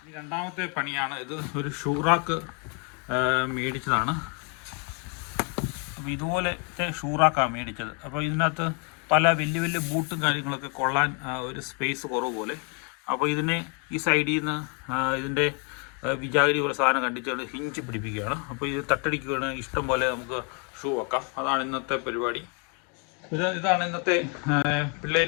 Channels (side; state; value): right; quieter; 36.5 dB